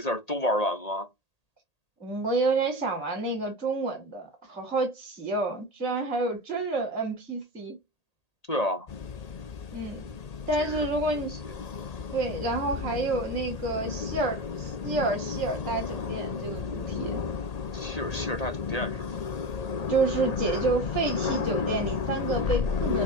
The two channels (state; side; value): late; right; 1.8 ms